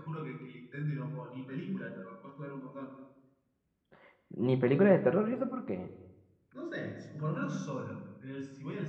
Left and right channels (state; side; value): identical; both; correlation 1.00